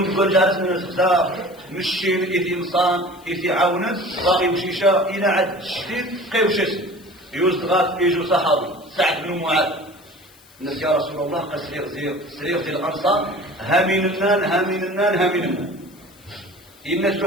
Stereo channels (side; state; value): left; noise; hiss, 26 dB below the sound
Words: نقول جالس من الخزاف مشين إذ إنسان إذ عاونا باغي يمشيشا إلى عد الشديد قيوشس يوزغات يجو صحابي سعد بن معاذ الناس يا رسول الله قال سرير ديال الأنصار هامين النان الناس